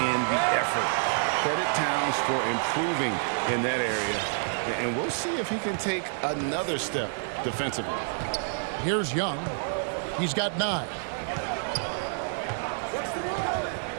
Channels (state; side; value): silent; left; digital silence